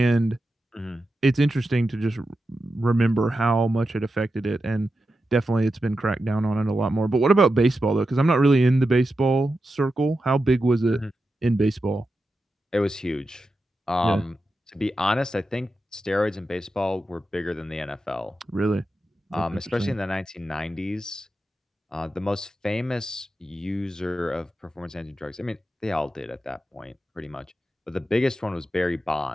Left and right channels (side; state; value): both; normal; correlation 0.90